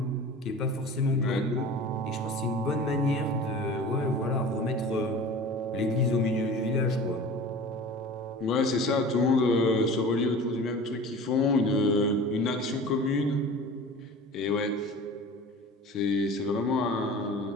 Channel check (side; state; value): both; normal; correlation 0.39